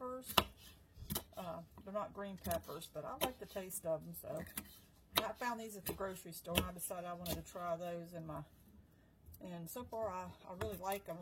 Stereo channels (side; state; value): both; identical; correlation 1.00